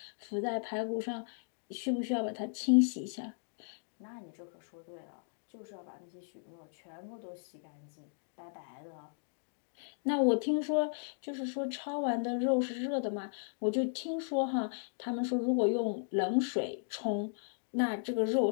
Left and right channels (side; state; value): right; silent; digital silence